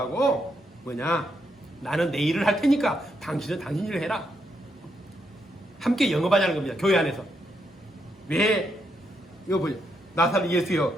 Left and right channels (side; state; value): both; normal; correlation 0.79